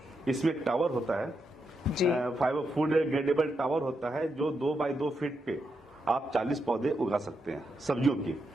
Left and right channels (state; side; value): normal; both; correlation 0.83